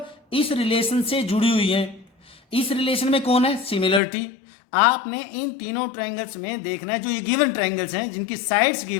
इस रिलेशन से जुड़ी हुई है। इस रिलेशन में कौन है, सिमिलरिटी। आपने इन तीनों ट्रायंगल्स में देखना है, जो ये गिवन ट्रायंगल्स हैं जिनकी साइड्स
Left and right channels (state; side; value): drops out; right; at 4.0 s